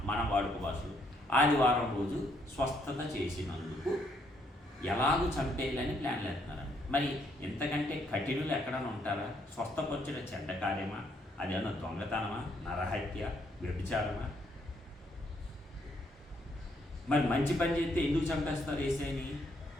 మన వాడుక భాషలో ఆదివారం రోజు స్వస్థత చేసినందుకు ఎలాగూ చంపేయాలని ప్లాన్లు వేస్తున్నారండి. మరి ఇంతకంటే కఠినులు ఎక్కడైనా ఉంటారా? స్వస్థపరచడం చెడ్డ కార్యమా? అదేమన్నా దొంగతనమా, నరహత్య, వ్యభిచారమా? మరి మంచి పని చేస్తే ఎందుకు చంపేస్తారు యేసయ్యని?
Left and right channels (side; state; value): both; normal; correlation 0.71